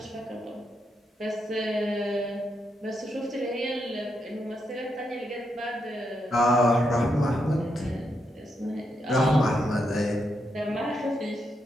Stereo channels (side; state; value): both; normal; correlation 0.81